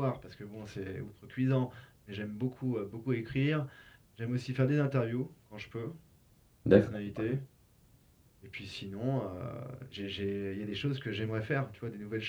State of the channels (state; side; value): identical; both; correlation 1.00